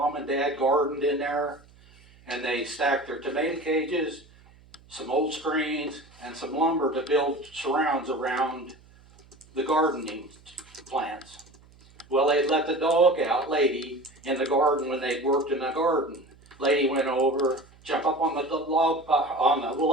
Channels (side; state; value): right; noise; hum, 27 dB below the sound